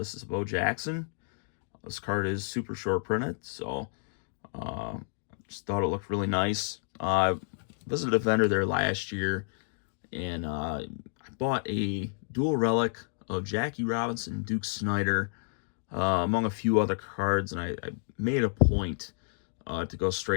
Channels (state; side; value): silent; right; digital silence